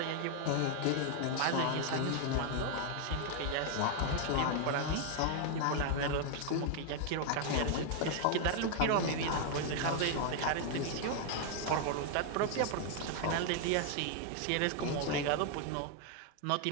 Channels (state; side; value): different; both; correlation 0.00